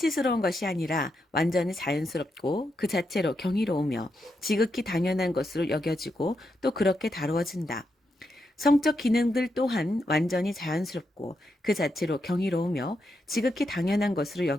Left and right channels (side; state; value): both; normal; correlation 0.83